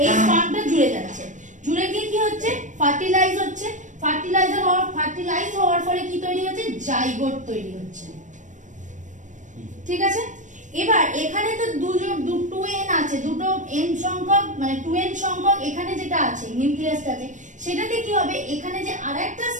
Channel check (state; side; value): late; left; 0.36 ms